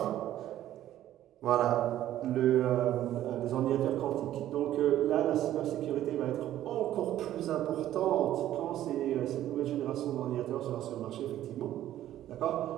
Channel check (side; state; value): left; quieter; 12.8 dB